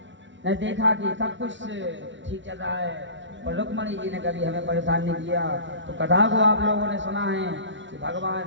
ने देखा कि सब कुछ ठीक चल रहा है और रुक्मणी जी ने कभी हमें परेशान नहीं किया। तो कथा को आप लोगों ने सुना है कि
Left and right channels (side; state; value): left; late; 0.55 ms